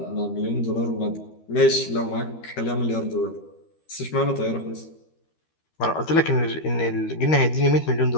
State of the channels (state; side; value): late; right; 13 ms